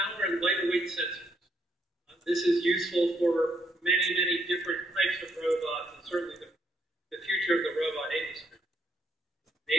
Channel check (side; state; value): both; normal; correlation 0.74